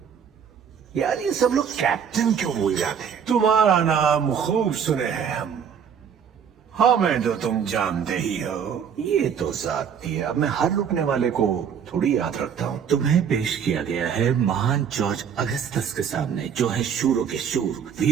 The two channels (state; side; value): quieter; left; 7.6 dB